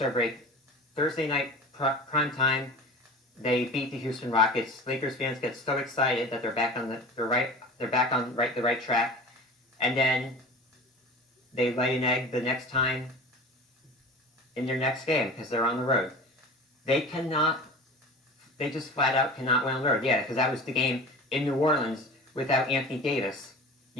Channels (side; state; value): both; normal; correlation 0.36